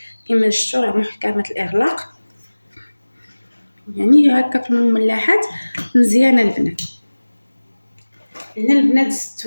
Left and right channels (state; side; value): inverted; both; correlation -1.00